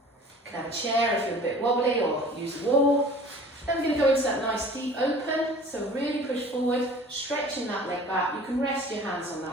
You can have a chair if you're a bit wobbly or use a wall. Then we're going to go into that nice deep open, so really push forward, stretching that leg back. You can rest your hands on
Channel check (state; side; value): normal; both; correlation 0.46